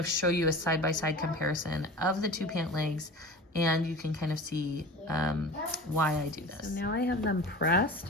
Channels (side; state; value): both; normal; correlation 0.36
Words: show you a side-by-side comparison of the 2 pant legs, and you can kind of see why I do this. So now I have them pressed,